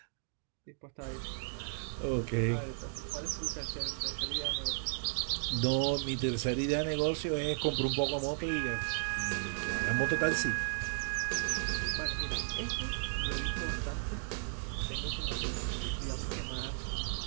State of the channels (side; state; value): left; silent; digital silence